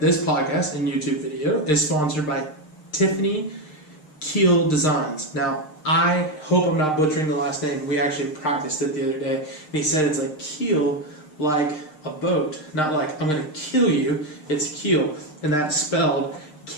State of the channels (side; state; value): right; late; 6.6 ms